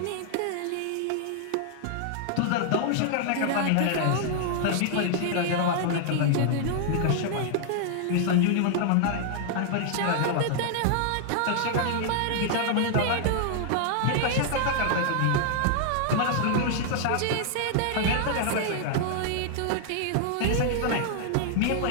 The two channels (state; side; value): different; both; correlation -0.01